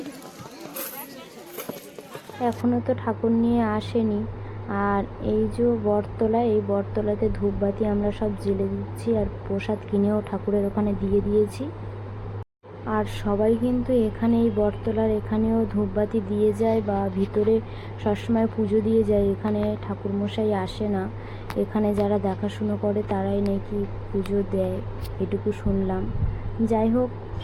এখনো তো ঠাকুর নিয়ে আসেনি, আর এই যে বটতলা, এই বটতলাতে ধূপবাতি আমরা সব জ্বেলে দিচ্ছি, আর প্রসাদ কিনেও ঠাকুরের ওখানে দিয়ে দিয়েছি। আর সবাই কিন্তু এখানে এই বটতলার এখানেও ধূপবাতি দিয়ে যায় বা ভিতরে সবসময় পুজো দিয়ে যায়। এখানে ঠাকুরমশাই আসে না, এখানে যারা দেখাশুনো করে তারাই নাকি পুজো দেয়, এটুকু শুনলাম। যাই হোক,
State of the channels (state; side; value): identical; both; correlation 1.00